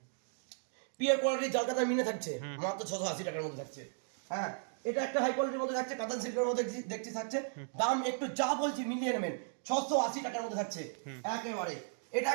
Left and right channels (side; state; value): left; silent; digital silence